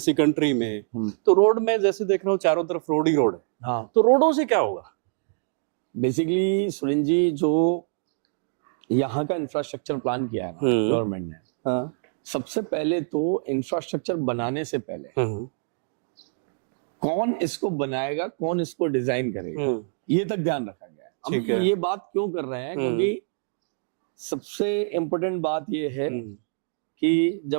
कंट्री में? तो रोड में जैसे देख रहा हूँ चारों तरफ रोड ही रोड है। हाँ, तो रोडों से क्या होगा? बेसिकली सुरेंद्र जी, जो यहाँ का इंफ्रास्ट्रक्चर प्लान किया है ना गवर्नमेंट ने, सबसे पहले तो इंफ्रास्ट्रक्चर बनाने से पहले कौन इसको बनाएगा, कौन इसको डिजाइन करेगा, ये तक ध्यान रखा गया है। अब ये बात क्यों कर रहे हैं, क्योंकि सबसे इम्पोर्टेंट बात ये है कि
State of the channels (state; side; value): silent; left; digital silence